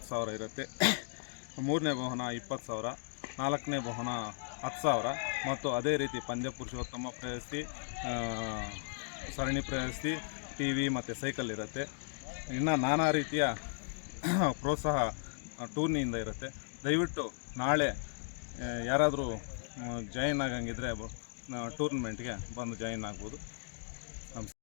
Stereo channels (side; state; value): right; silent; digital silence